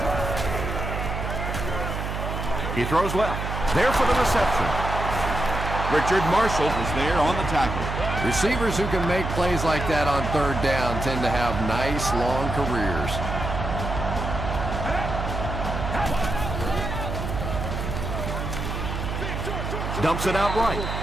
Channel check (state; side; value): noise; right; hum, 4 dB below the sound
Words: He throws left. There for the reception. Richard Marshall was there on the tackle. Receivers who can make plays like that on 3rd down tend to have nice long careers. Dumps it out right.